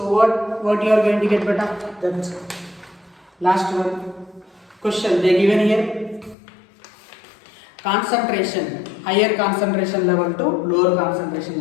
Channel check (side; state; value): right; drops out; at 6.4 s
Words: what you are going to get beta? That's last one. Question they given here. Concentration, higher concentration level to lower concentration